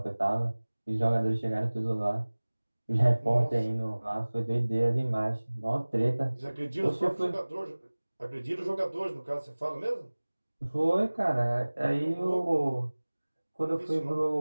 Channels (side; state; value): both; inverted; correlation -1.00